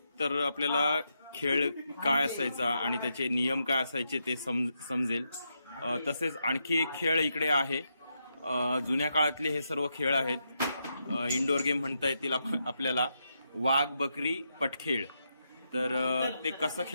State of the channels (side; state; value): both; inverted; correlation -0.83